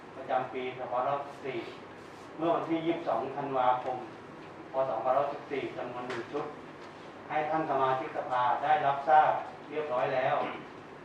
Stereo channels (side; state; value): both; identical; correlation 1.00